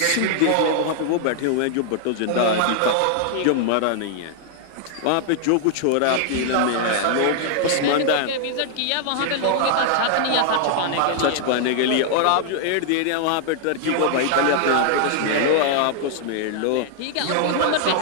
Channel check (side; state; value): both; different; correlation -0.01